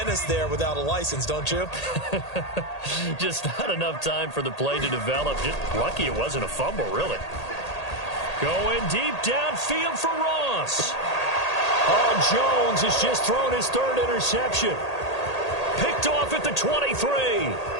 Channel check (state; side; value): late; right; 1.8 ms